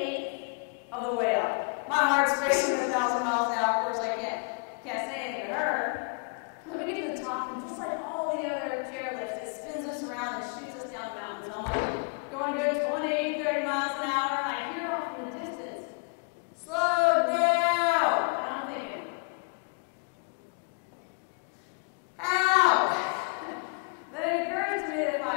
of the way up. My heart's racing 1,000 miles an hour. Of course, I can't say anything to her. So we get to the top, and just like all the other chairlifts, it spins us around and shoots us down the mountain. So I'm like going a good 20, 30 miles an hour, and I hear off in the distance, "Slow down." And I'm thinking, how? Then it occurs to me that if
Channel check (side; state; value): right; quieter; 39.6 dB